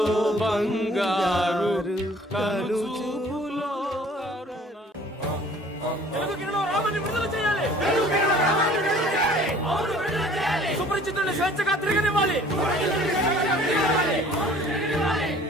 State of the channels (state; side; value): normal; both; correlation 0.52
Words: బంగారు కలుచుపులో సుపరిచితుల్ని స్వేచ్ఛగా తిరగనివ్వాలి.